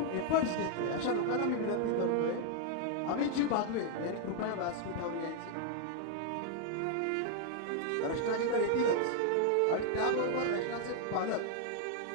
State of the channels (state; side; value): different; both; correlation 0.00